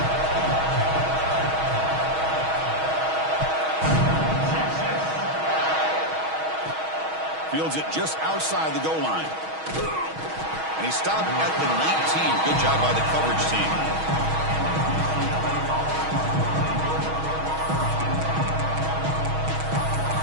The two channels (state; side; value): late; left; 6.3 ms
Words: Fields it just outside the goal line. And he stopped at the 19. Good job by the coverage team.